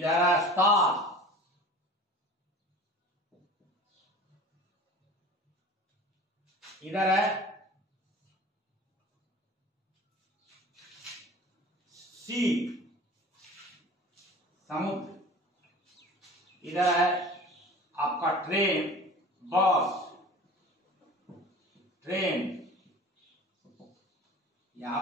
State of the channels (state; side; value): normal; both; correlation 0.40